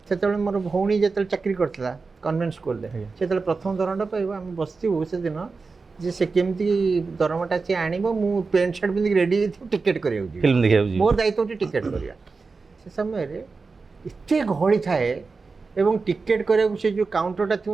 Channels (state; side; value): quieter; left; 4.3 dB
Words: से मोर भौणी जो चाकरी करता कन्वेंट स्कूल से प्रथम दरमाटा पाइब आम बसू से दिन जे से केमती दरमाटा सी आण मु पैंट सार्ट पिंधिक रेडी टिकेट कर मोर दायित्व टिकेट करवा से समय एत गहली थाए एवं टिकेट कराया से जो काउंटरटा